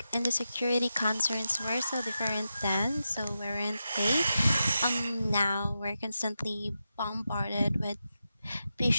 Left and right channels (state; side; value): inverted; both; correlation -0.89